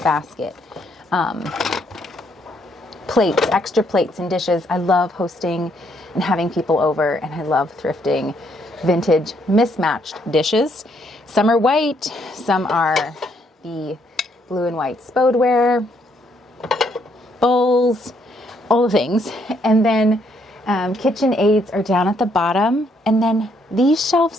basket. Plates, extra plates and dishes. I love hosting and having people over, and I love thrifting vintage mismatched dishes. Some are white, some are the blue and white spodeware, bowls, all the things. And then KitchenAids are down at the bottom, and then these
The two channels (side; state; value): both; normal; correlation 0.71